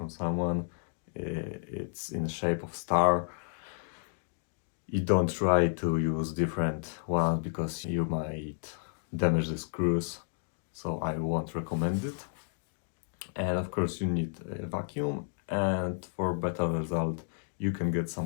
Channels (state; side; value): silent; right; digital silence